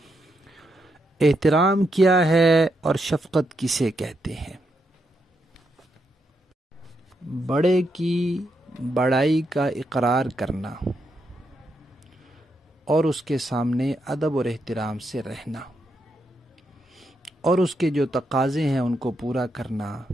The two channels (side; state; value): both; normal; correlation 0.81